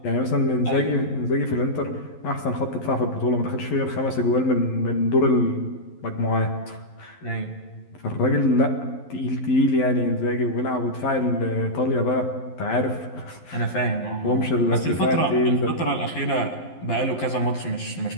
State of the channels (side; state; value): right; late; 12 ms